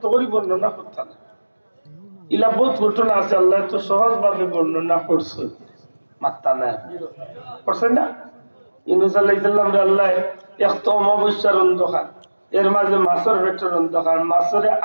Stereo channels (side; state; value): both; inverted; correlation -1.00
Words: করে বর্ণনা করতাম না। ইলা বহুত ঘটনা আছে আল্লাহ তো সহজ ভাবে বর্ণনা করছে। মাত্তা না করছে না? ইউনূস আলাইহিস সালাম রে আল্লাহ একটা অমাবস্যার অন্ধকার, এর মাঝে মাছের পেটের অন্ধকার, মাছের